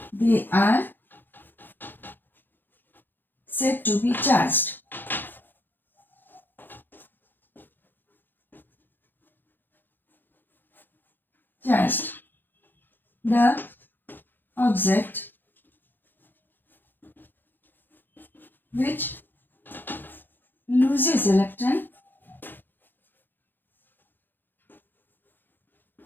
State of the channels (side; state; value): right; late; 0.093 ms